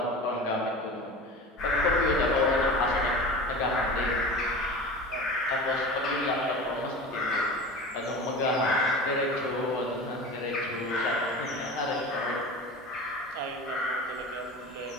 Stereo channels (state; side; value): normal; both; correlation 0.34